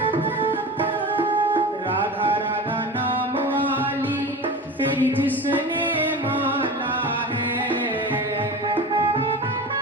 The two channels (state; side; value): normal; both; correlation 0.31